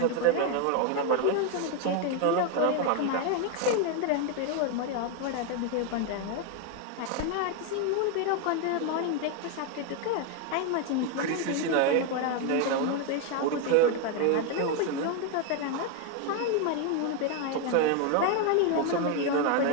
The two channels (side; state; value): both; different; correlation 0.01